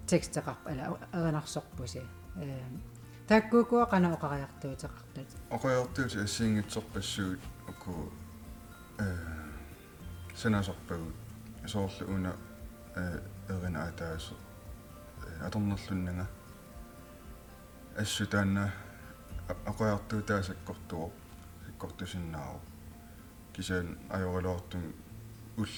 текстеқарп ала эринарсорпуси таккукуа канаоқариартуутеқартут Oqajartuut assiingitsorpassuut uku sanasarpagut soorlu una erina ataaso atornerlunnanga assutaanna oqajartuutaasakkortuo sikkortusinnaaru kisaan ajoraloortum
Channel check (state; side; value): identical; both; correlation 1.00